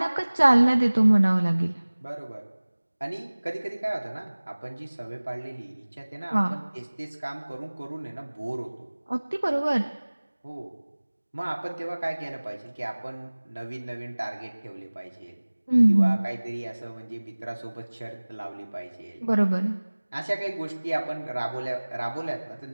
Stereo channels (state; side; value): inverted; both; correlation -1.00